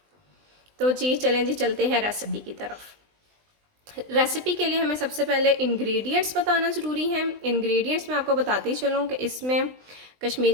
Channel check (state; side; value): late; left; 20 ms